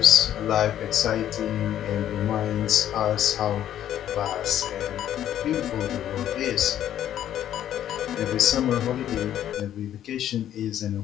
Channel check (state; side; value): quieter; right; 11.2 dB